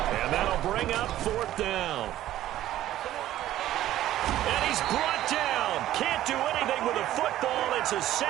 And that'll bring up 4th down. And he's brought down. Can't do anything with a football. It's a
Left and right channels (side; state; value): left; quieter; 13.5 dB